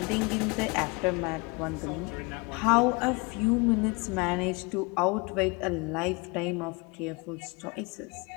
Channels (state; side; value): quieter; right; 27.8 dB